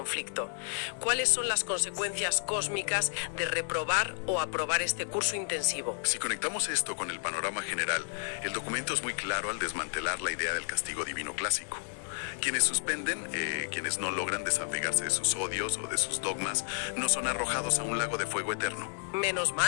¿Cuáles son las consecuencias cósmicas de reprobar o aprobar este curso intensivo? Si conectamos esto con el panorama general, el documento es muy claro al desmantelar la idea del castigo divino clásico. Quienes suspenden, quienes no logran desapegarse de sus odios o de sus dogmas, no son arrojados a un lago de fuego eterno. Menos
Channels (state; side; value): silent; right; 57 dB below the other